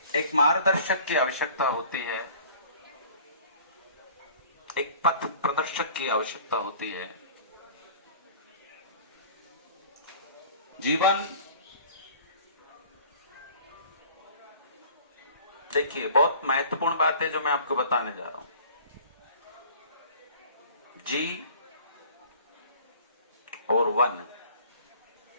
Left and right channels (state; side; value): inverted; both; correlation -0.49